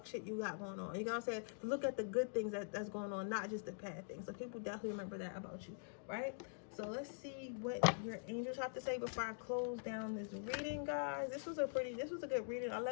shit you got going on. You know what I'm saying? Look at the good things that's going on, not just the bad things. So people definitely remember that about you, right? So let's see what your angels have to say before I close down this reading, guys. This was a good reading. I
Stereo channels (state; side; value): silent; right; digital silence